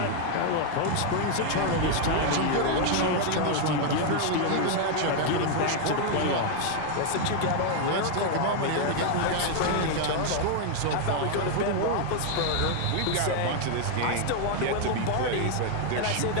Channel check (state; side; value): different; both; correlation 0.00